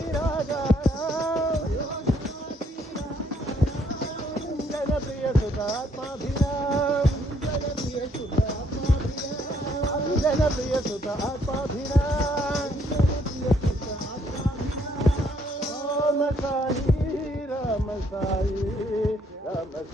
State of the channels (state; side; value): normal; both; correlation 0.68